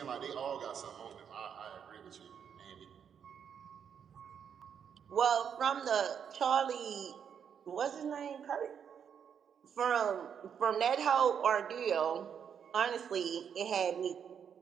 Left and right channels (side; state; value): left; quieter; 7.8 dB